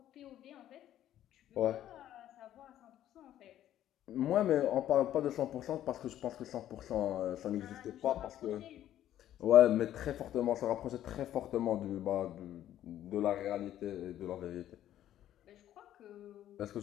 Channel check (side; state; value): right; quieter; 12.0 dB